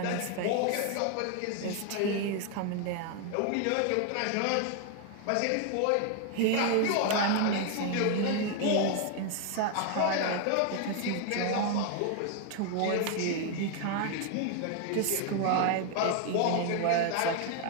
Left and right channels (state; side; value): different; both; correlation 0.01